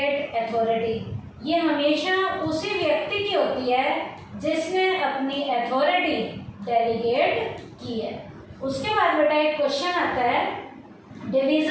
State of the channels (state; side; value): identical; both; correlation 1.00